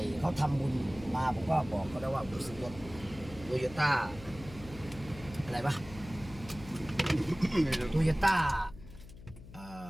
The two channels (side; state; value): left; noise; hum, 17 dB below the sound